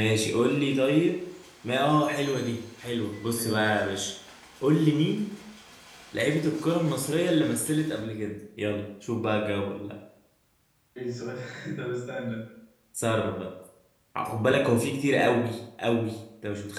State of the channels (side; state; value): both; identical; correlation 1.00